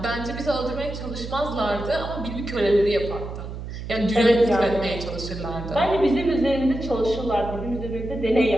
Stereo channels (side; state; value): right; noise; hum, 8 dB below the sound